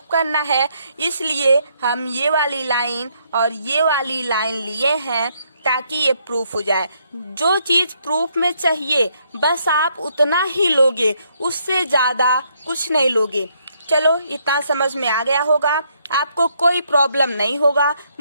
करना है। इसलिए हम ये वाली लाइन और ये वाली लाइन लिए हैं ताकि ये प्रूफ हो जाए। जो चीज प्रूफ में चाहिए बस आप उतना ही लोगे, उससे ज्यादा कुछ नहीं लोगे। चलो, इतना समझ में आ गया होगा, आपको कोई प्रॉब्लम नहीं होगा,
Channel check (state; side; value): inverted; both; correlation -0.72